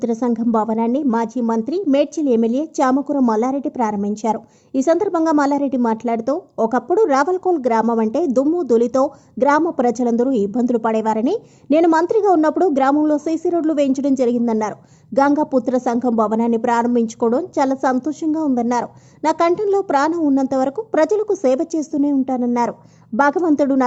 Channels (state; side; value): identical; both; correlation 1.00